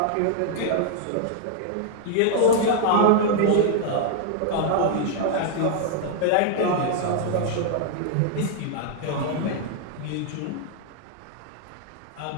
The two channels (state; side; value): different; both; correlation 0.00